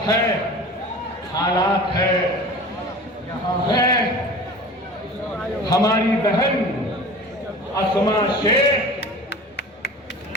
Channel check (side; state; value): both; normal; correlation 0.39